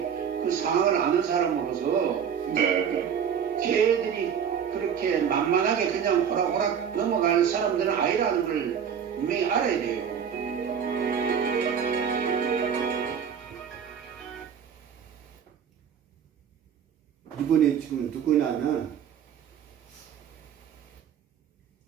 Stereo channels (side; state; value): left; quieter; 7.8 dB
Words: 그 상황을 아는 사람으로서 네. 걔들이 그렇게 만만하게 그냥 호락호락 넘어갈 사람들은 아니라는 걸 분명히 알아야 돼요. 이분이 지금 누구냐면